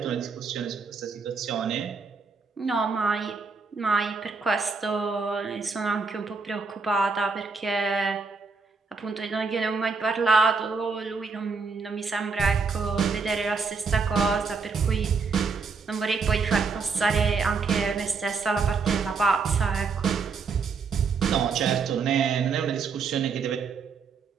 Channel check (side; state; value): left; quieter; 4.9 dB